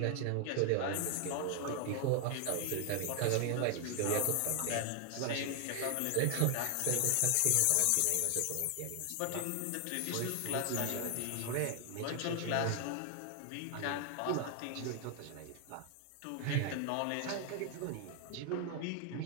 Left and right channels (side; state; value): both; different; correlation 0.00